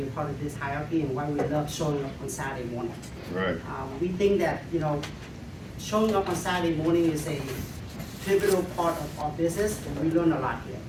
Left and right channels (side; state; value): both; identical; correlation 1.00